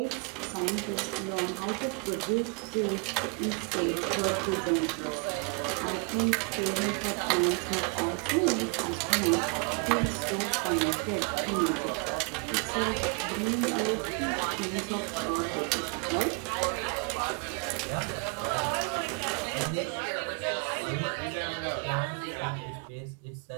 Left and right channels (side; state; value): left; quieter; 33.5 dB